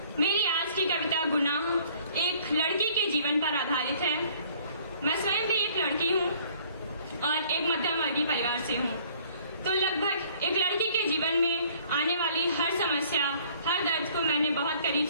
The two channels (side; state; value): both; inverted; correlation -0.57